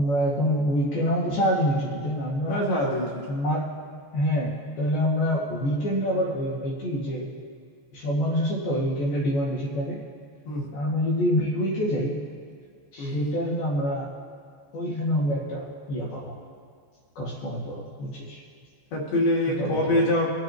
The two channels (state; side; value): late; right; 14 ms